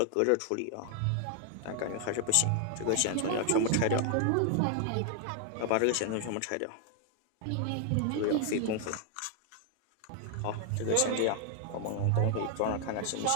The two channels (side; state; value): both; different; correlation 0.00